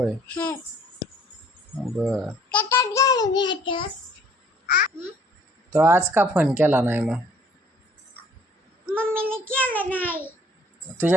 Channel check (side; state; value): both; normal; correlation 0.59